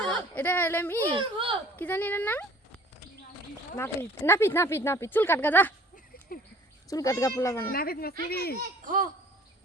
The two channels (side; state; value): both; normal; correlation 0.51